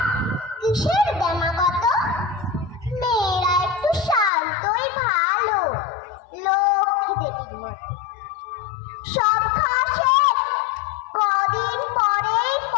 কিসের দেমাগত? মেয়েরা একটু শান্তই ভালো, লক্ষ্মী দেবীর মতো। সব খাওয়া শেষ, কদিন পরেই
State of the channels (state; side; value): drops out; right; at 4.3 s